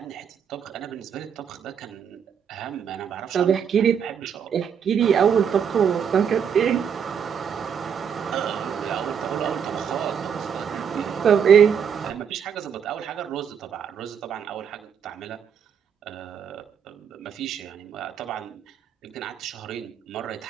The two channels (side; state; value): left; quieter; 7.6 dB